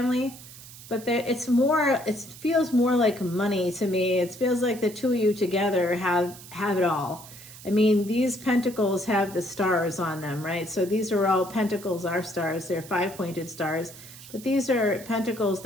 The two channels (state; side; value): noise; right; hiss, 17 dB below the sound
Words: but it feels more like money to me. It feels like the two of you together have it all. I mean, these pentacles have the stars on them, right? So these are all pentacles, are stars. They're 5-pointed stars, but these are pentacles